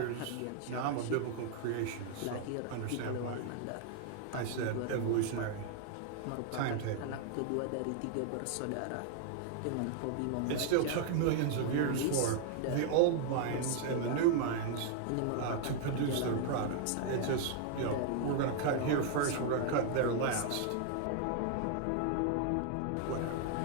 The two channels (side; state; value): both; different; correlation 0.00